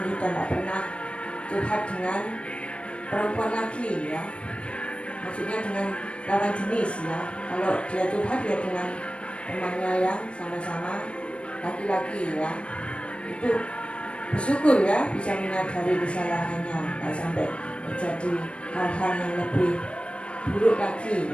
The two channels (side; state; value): right; late; 0.059 ms